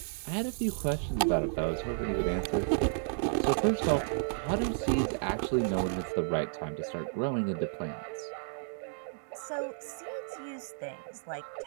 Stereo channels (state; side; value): silent; left; digital silence